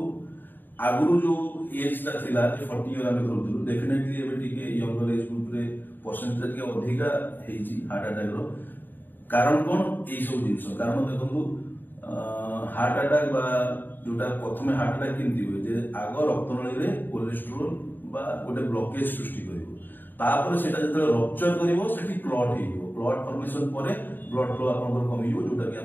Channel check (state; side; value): late; right; 0.092 ms